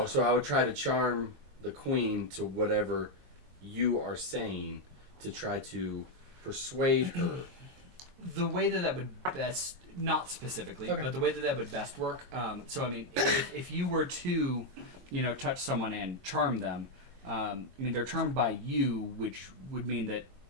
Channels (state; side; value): late; left; 22 ms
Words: so I would try to charm the queen to whatever you are saying to try to persuade her. The way that would best, not specifically, Okay. but the way that would best work. So I mean, if you were to, touch someone and charm them, I mean they're charmed by you, which would mean that